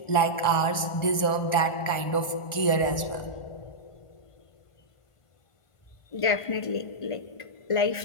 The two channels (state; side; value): late; right; 1.4 ms